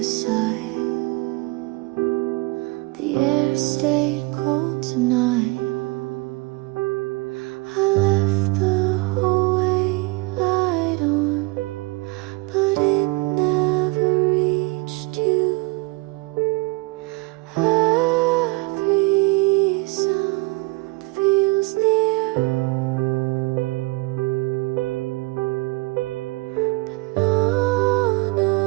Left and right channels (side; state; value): left; quieter; 25.1 dB